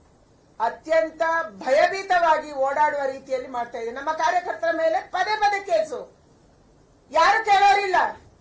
ಅತ್ಯಂತ ಭಯಭೀತವಾಗಿ ಓಡಾಡುವ ರೀತಿಯಲ್ಲಿ ಮಾಡ್ತಾ ಇದೆ. ನಮ್ಮ ಕಾರ್ಯಕರ್ತರ ಮೇಲೆ ಪದೇ ಪದೇ ಕೇಸು, ಯಾರು ಕೇಳೋರಿಲ್ಲ.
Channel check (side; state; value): both; identical; correlation 1.00